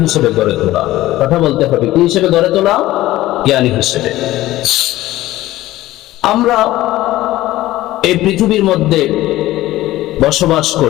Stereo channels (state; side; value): quieter; right; 16.1 dB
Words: হিসেবে গড়ে তোলা। কথা বলতে হবে, কি হিসেবে গড়ে তোলা? জ্ঞানী হিসেবে। আমরা এই পৃথিবীর মধ্যে বসবাস